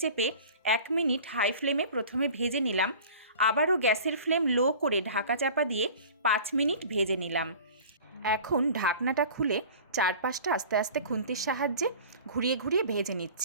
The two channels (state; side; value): inverted; both; correlation -0.42